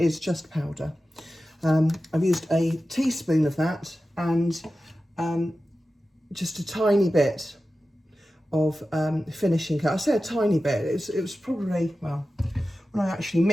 just powder. I've used a teaspoon of that and just a tiny bit of finishing coat. I say a tiny bit, it was probably, well, when I actually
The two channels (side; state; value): both; normal; correlation 0.94